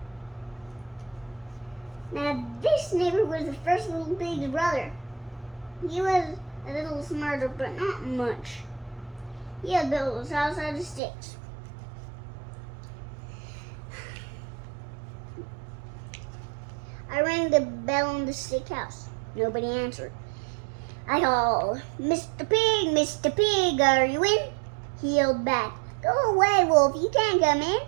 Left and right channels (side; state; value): left; drops out; at 11.0 s